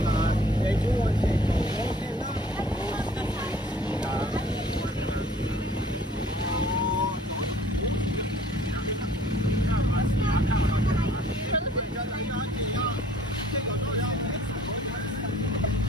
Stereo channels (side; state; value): both; normal; correlation 0.54